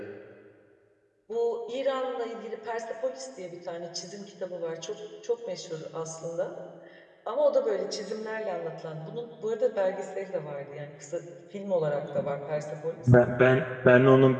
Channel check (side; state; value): both; identical; correlation 1.00